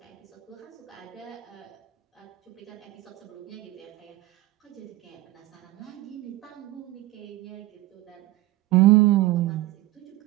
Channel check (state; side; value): quieter; left; 17.7 dB